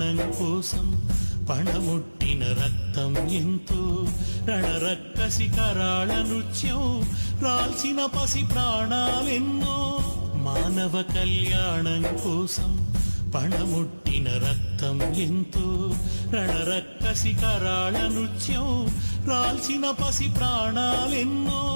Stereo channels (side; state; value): both; inverted; correlation -1.00